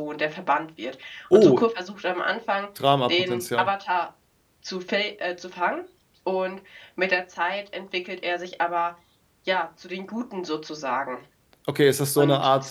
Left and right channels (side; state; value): both; identical; correlation 1.00